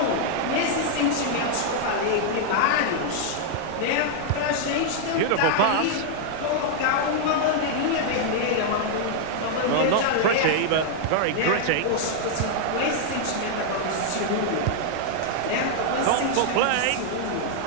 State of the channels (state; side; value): different; both; correlation -0.01